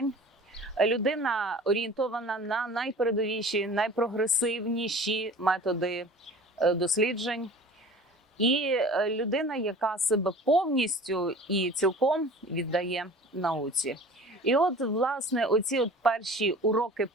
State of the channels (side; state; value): both; normal; correlation 0.42